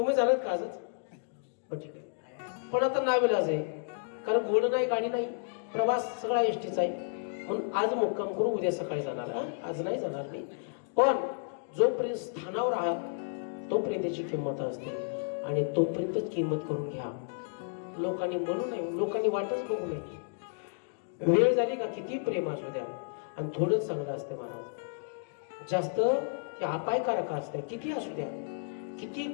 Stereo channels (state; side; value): silent; right; digital silence